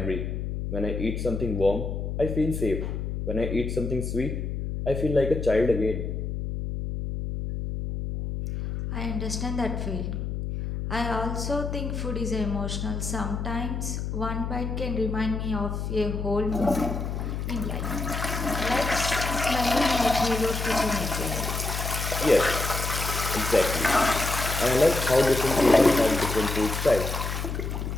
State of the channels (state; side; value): noise; left; hum, 4 dB below the sound